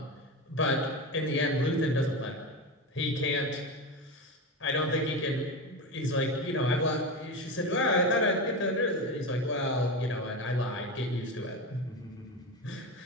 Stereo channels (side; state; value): both; normal; correlation 0.20